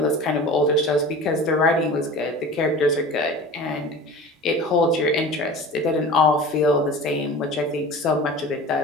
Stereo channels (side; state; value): both; normal; correlation 0.37